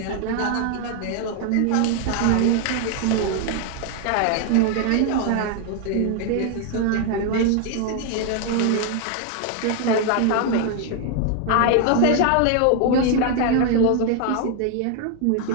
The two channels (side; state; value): both; different; correlation 0.00